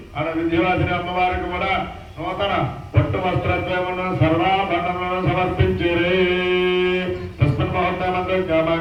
ఆడ విద్యావాసిని అమ్మవారికి కూడా నూతన పట్టు వస్త్రత్వమును సర్వాభరణములను సమర్పించిరే. తస్మిన్ ముహూర్తమందు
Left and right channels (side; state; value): both; identical; correlation 1.00